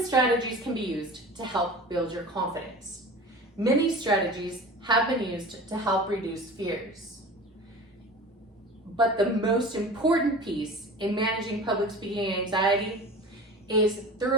strategies can be used to help build your confidence. Many strategies have been used to help reduce fears. But the most important piece in managing public speaking anxiety is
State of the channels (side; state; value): both; normal; correlation 0.36